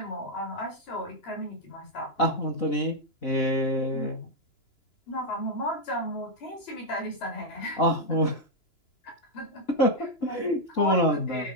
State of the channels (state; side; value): late; right; 2.9 ms